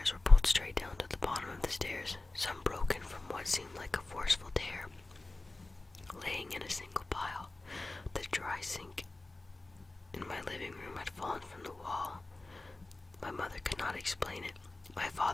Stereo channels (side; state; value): right; quieter; 3.0 dB